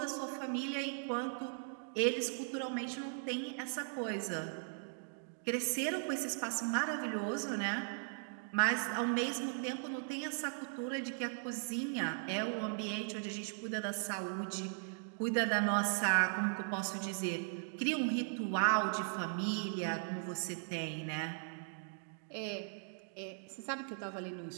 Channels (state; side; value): silent; left; digital silence